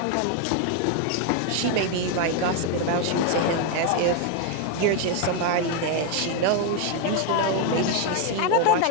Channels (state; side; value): different; both; correlation 0.01